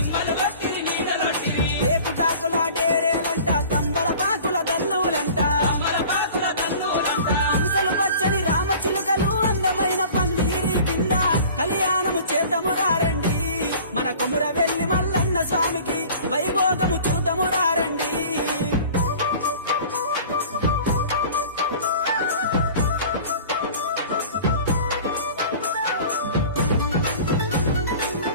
ఏపుటాకుల డేరేలంట తంబల పాకుల దల్లులంట హంసలు పచ్చని రామచిలుకలు అందమైన పందిరి కింద కళ్యాణము చేద్దాము రారండి మన కొమురవెల్లి మల్లన్న స్వామికి వైభోగము చూద్దాము రారండి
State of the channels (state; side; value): inverted; both; correlation -0.44